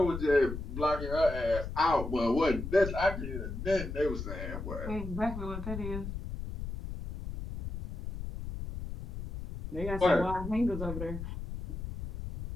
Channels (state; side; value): noise; left; rumble, 7 dB below the sound